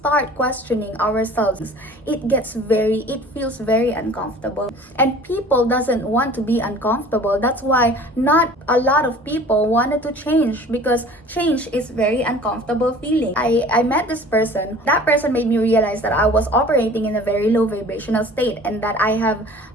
questioning ourselves, it feels very uncomfortable, and people doesn't want to be uncomfortable. That's why not a lot of people wanted to change, because change is very uncomfortable feeling. I met this person. That person made me realize that I was operating in a very low vibrational state and that I have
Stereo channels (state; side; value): normal; both; correlation 0.46